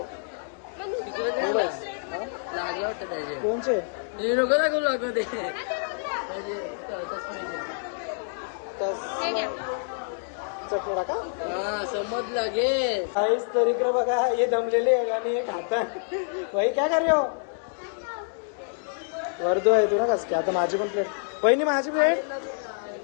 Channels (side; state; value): right; silent; digital silence